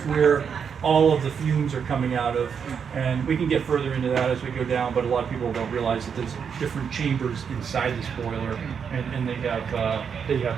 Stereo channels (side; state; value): left; quieter; 6.9 dB